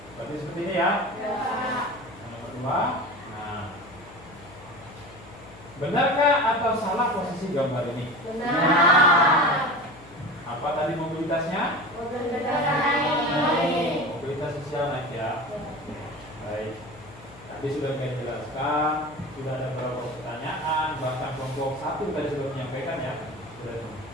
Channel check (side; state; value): left; noise; hum, 20 dB below the sound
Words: Berarti seperti ini ya. Yang nomor 2. Nah, Benarkah atau salah posisi gambar ini? Benar. Apa tadi mobilitasnya? Mobilitas sosial naik ya. Baik. Tadi sudah saya jelaskan, sudah ada beberapa pertanyaan, bahkan kelompok 1 tadi sudah menyampaikan ya. Sudah.